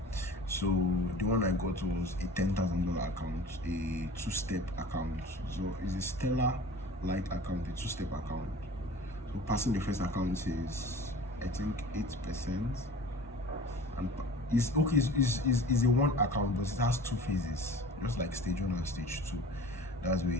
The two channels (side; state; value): both; normal; correlation 0.42